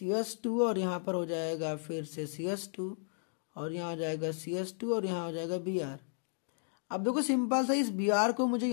और यहाँ पर हो जाएगा फिर से CH2 और यहाँ हो जाएगा CH2 और यहाँ हो जाएगा Br। अब देखो सिंपल सा इस Br को मुझे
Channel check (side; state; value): right; silent; digital silence